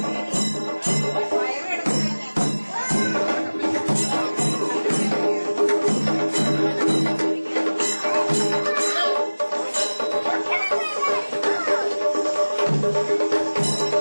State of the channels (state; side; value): inverted; both; correlation -1.00